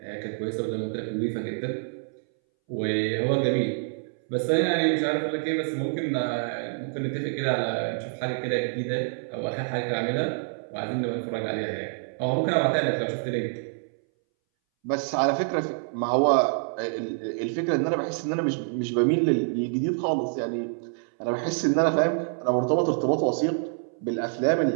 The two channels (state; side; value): silent; left; 60 dB below the other